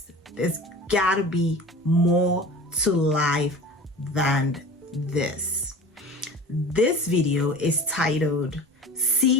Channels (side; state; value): both; normal; correlation 0.38